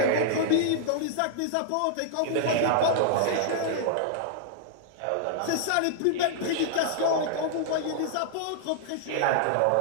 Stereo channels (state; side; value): different; both; correlation -0.01